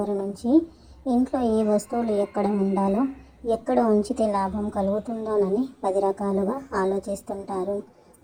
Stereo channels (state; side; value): identical; both; correlation 1.00